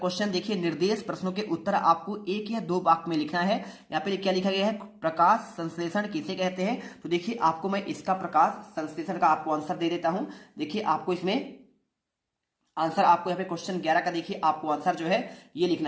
देखिए निर्देश प्रश्नों के उत्तर आपको 1 या 2 वाक्य में लिखना है। यहाँ पे क्या लिखा गया है? प्रकाश संश्लेषण किसे कहते हैं? तो देखिए आपको मैं इसका प्रकाश संश्लेषण का आपको आंसर दे देता हूं। देखिए आपको इसमें आंसर आपको यहाँ पे क्वेश्चन 11 का देखिए आपको आंसर जो है ये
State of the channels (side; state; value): both; identical; correlation 1.00